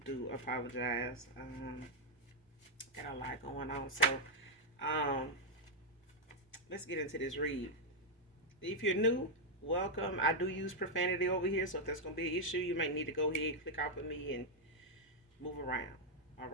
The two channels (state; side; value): normal; both; correlation -0.02